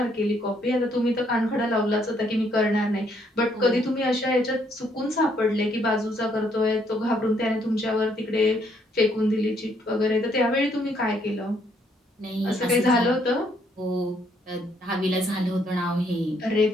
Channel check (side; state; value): both; normal; correlation 0.70